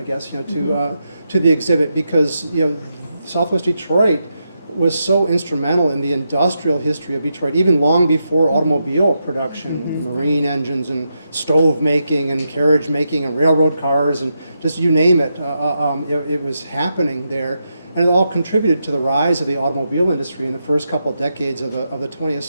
guess, to the exhibit because, Southwest Detroit was so instrumental in the industrial history of Detroit, even long before automobile production, marine engines and stove making and carriage making and railroad cars and just you name it, it was happening there. And it all contributed to the rise of the automobile industry in the first couple of decades of the 20th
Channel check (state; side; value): inverted; both; correlation -0.85